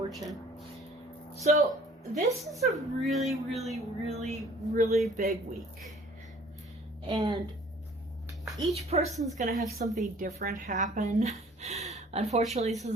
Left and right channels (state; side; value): normal; both; correlation 0.53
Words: So this is a really, really, really, really big week. And each person's going to have something different happen. Unfortunately, this